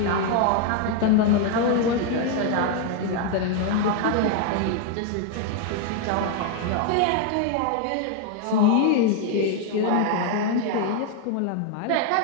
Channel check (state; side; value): different; both; correlation 0.01